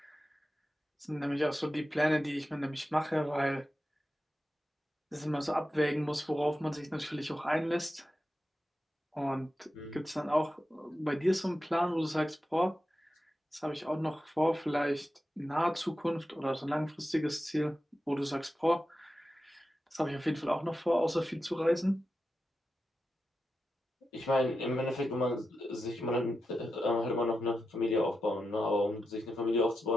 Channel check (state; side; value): normal; both; correlation 0.90